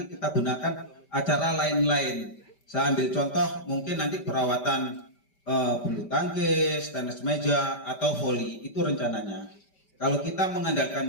kita gunakan acara lain-lain. Saya ambil contoh mungkin nanti perawatan bulu tangkis, tenis meja atau voli, itu rencananya. Kalau kita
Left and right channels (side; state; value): right; late; 5.1 ms